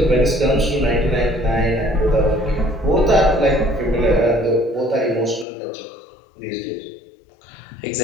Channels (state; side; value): drops out; right; at 5.5 s